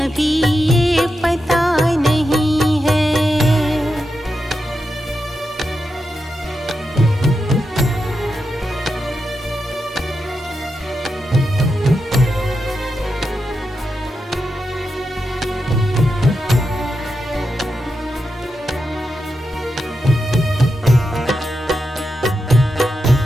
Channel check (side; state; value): both; normal; correlation 0.87